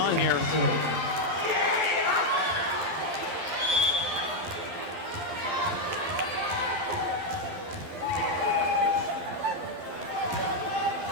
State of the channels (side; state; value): left; late; 11 ms